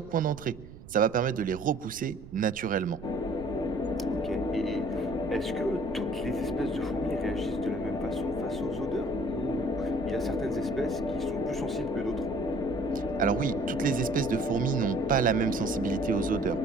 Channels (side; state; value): right; noise; rumble, 16 dB below the sound